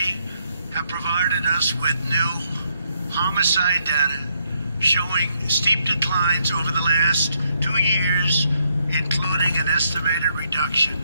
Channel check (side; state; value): both; inverted; correlation -0.75